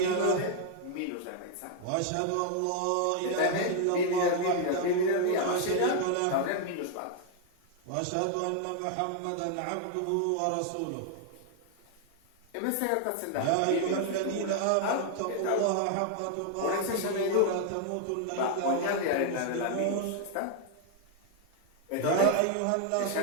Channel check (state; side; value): different; both; correlation 0.00